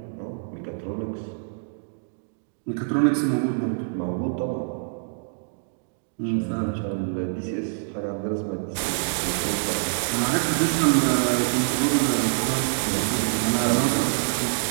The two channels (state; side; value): silent; left; digital silence